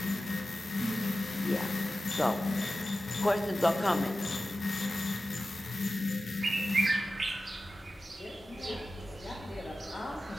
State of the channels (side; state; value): both; normal; correlation 0.94